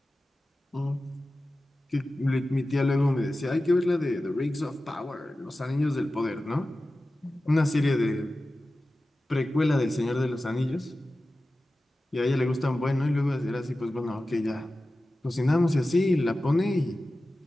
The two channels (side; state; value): both; normal; correlation 0.95